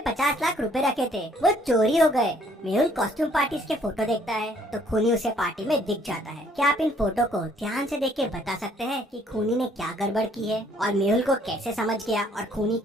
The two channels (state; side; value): normal; both; correlation 0.63